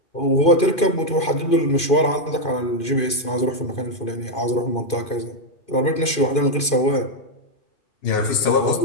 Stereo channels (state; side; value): late; right; 2.5 ms